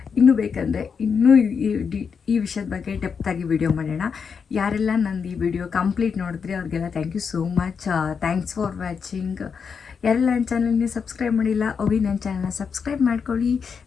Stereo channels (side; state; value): right; quieter; 6.2 dB